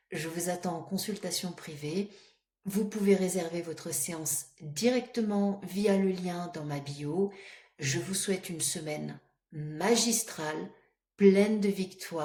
je vous attends en consultation privée. Vous pouvez réserver votre séance directement via le lien dans ma bio. Je vous souhaite une semaine magistrale, pleine de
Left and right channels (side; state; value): both; identical; correlation 1.00